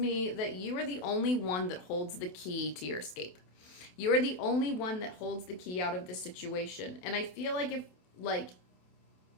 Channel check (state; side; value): late; right; 28 ms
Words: that you are the only one that holds the key to your escape. You are the only one that holds the key out of this situation. And I feel like if, like,